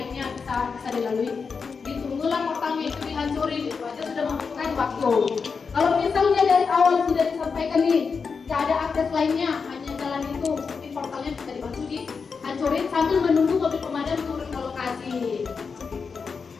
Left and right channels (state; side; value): quieter; right; 5.3 dB